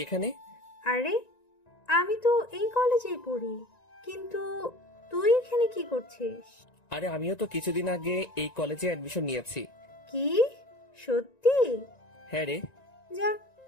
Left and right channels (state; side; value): late; right; 1.9 ms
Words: এখানে? আরে আমি তো এই কলেজেই পড়ি, কিন্তু তুই এখানে কি করছিস? আরে আমিও তো কিছুদিন আগে এই কলেজে অ্যাডমিশন নিয়েছি। কি সত্যি? হ্যাঁ রে। যাক